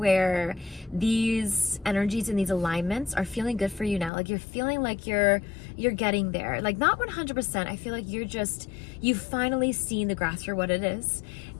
these energies and these alignments are feeling good for you now. Like you're feeling like you're getting there. Like not 100%. I feel like you've finally seen the grass for what it is,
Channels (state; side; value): drops out; right; at 4.1 s